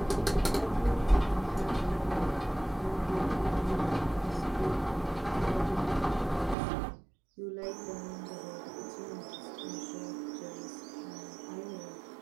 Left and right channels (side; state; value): left; drops out; at 6.6 s